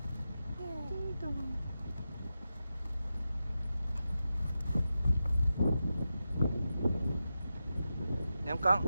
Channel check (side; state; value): both; inverted; correlation -0.91